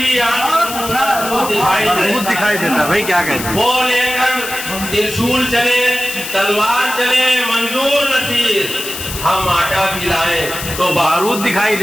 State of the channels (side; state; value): left; noise; hiss, 8 dB below the sound